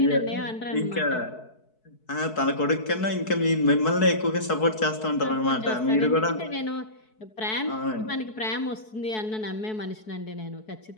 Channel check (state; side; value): late; right; 4.6 ms